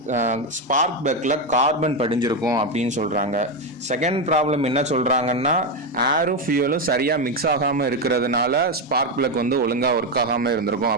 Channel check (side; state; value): both; normal; correlation 0.09